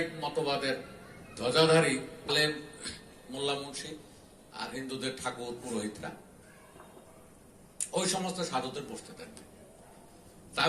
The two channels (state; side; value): identical; both; correlation 1.00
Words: মতবাদের ধ্বজাধারী আলেম, মোল্লা মুন্সি আর হিন্দুদের ঠাকুর পুরোহিতরা ওই সমস্ত সাধুদের বসতে দেন। তাই